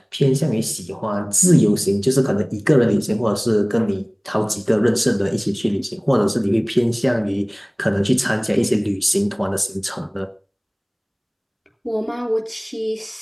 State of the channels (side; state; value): both; identical; correlation 1.00